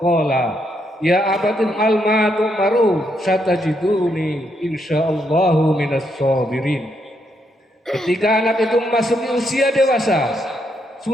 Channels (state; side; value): normal; both; correlation 0.77